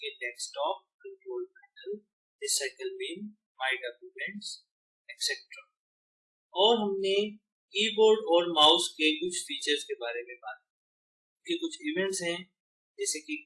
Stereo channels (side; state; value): both; identical; correlation 1.00